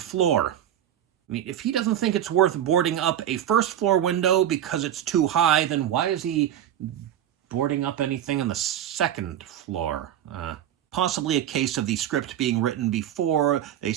I mean, if he doesn't think it's worth boarding up a first floor window because it's too high, then why is he boarding up anything on the 2nd floor? possibly a case of the script being written before they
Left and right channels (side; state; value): left; quieter; 10.9 dB